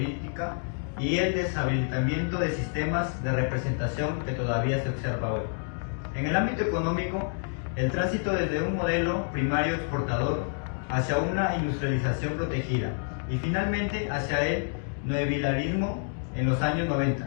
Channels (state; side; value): silent; right; 59 dB below the other